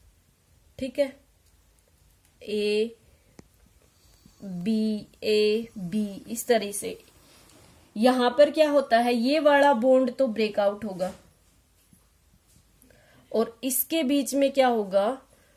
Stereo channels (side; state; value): both; identical; correlation 1.00